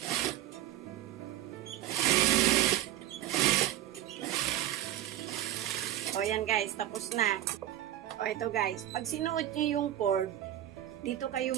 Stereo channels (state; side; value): quieter; left; 12.9 dB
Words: O yan guys, tapos na. O ito guys, pag sinuot nyo yung cord, dito kayo